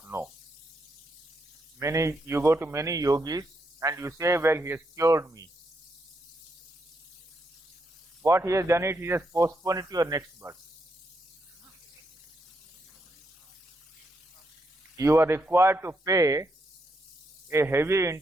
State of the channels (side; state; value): both; normal; correlation 0.80